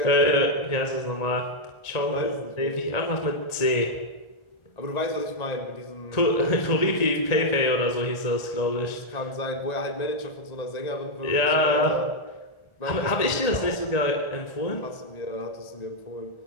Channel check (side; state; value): right; late; 1.8 ms